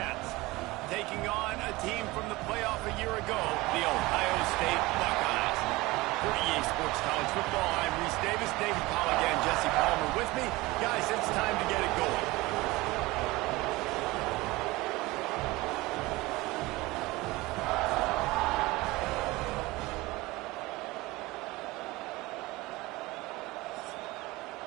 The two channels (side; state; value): left; quieter; 20.9 dB